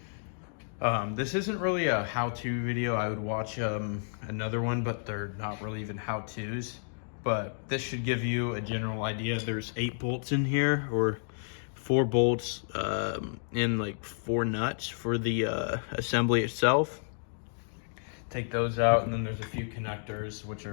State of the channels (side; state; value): right; silent; digital silence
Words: This isn't really a how-to video. I would watch another one, but they're not really even how-tos. But this should give you a general idea. There's 8 bolts in here, or 4 bolts and like 4 nuts for the assembly itself. Take those out, and then there's a few connectors which